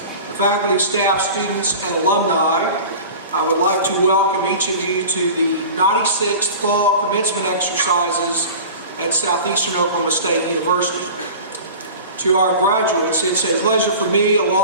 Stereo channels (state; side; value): inverted; both; correlation -0.37